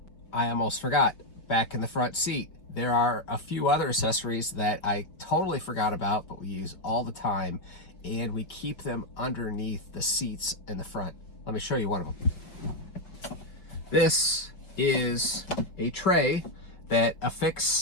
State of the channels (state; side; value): late; right; 5.4 ms